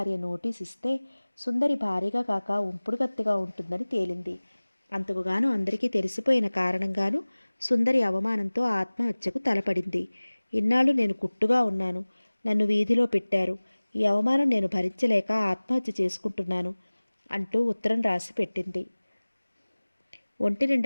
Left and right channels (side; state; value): both; inverted; correlation -1.00